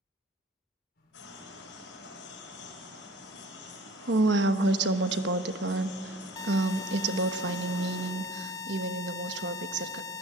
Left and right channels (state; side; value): normal; both; correlation 0.47